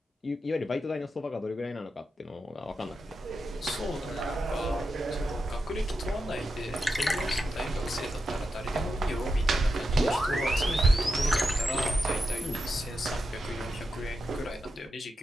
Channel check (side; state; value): both; normal; correlation 0.88